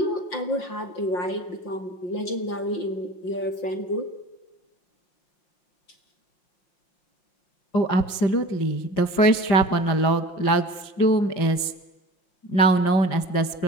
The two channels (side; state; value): right; late; 5.6 ms